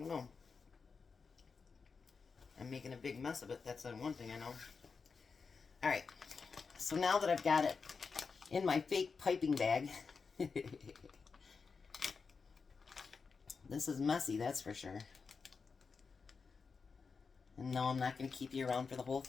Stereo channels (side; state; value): right; quieter; 5.1 dB